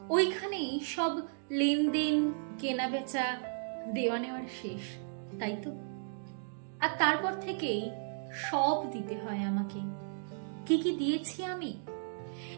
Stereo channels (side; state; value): left; silent; digital silence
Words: ওইখানেই সব লেনদেন, কেনা বেচা, দেওয়া নেওয়ার শেষ, তাই তো? আর তারপর থেকেই সব দিতে হয় আমাকে। কি কি দিয়েছি আমি?